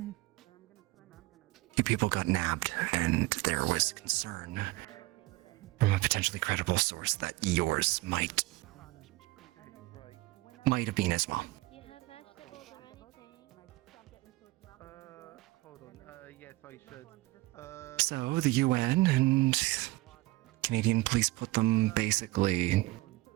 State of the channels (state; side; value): quieter; left; 20.1 dB